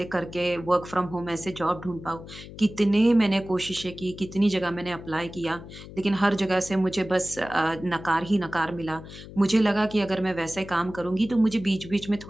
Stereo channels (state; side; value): noise; left; hum, 15 dB below the sound